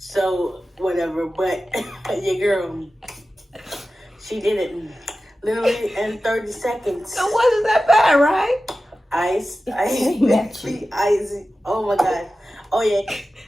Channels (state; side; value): normal; both; correlation 0.94